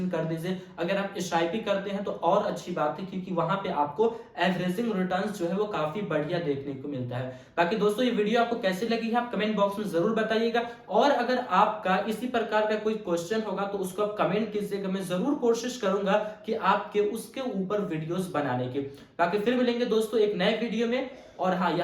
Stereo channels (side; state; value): both; identical; correlation 1.00